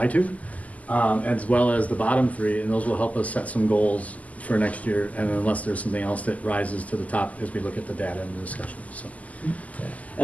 to, as well as the bottom 3, and those will help us set some goals for next year, and unless there's something else that rises to the top as we look at the data and the discussion. So.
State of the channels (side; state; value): right; late; 0.074 ms